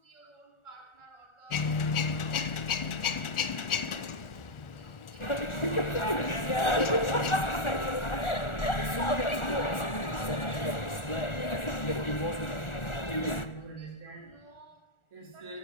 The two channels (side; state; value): right; late; 1.4 ms